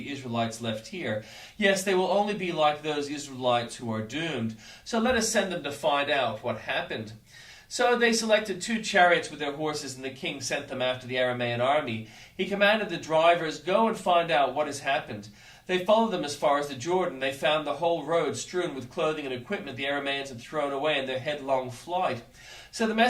Israelites left here. Yes, they will only be like those Israelites who are doomed. So let us send them to find out what happened." So they selected 2 chariots with their horses, and the king sent them after the Aramaean army. He commanded the drivers, "Go and find out what has happened." They followed them as far as the Jordan. They found the whole road strewn with clothing and equipment the Aramaeans had thrown away in their headlong flight. So the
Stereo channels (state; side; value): identical; both; correlation 1.00